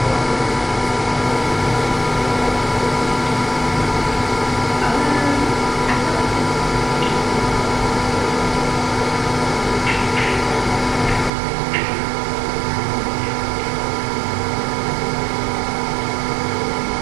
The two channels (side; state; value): left; drops out; at 11.3 s